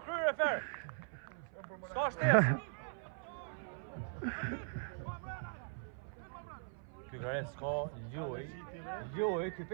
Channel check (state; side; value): silent; left; 51 dB below the other